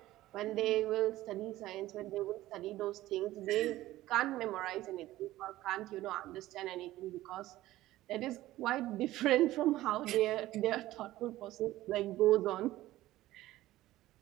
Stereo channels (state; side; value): quieter; left; 15.9 dB